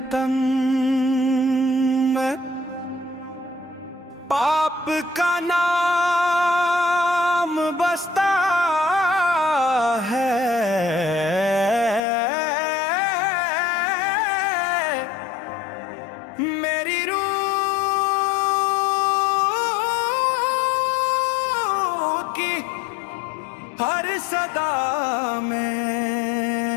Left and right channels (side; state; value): right; drops out; at 12.0 s